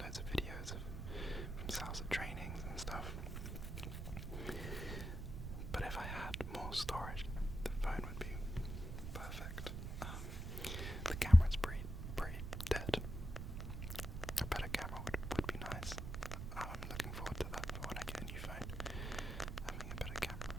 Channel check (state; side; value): noise; right; rumble, 5 dB below the sound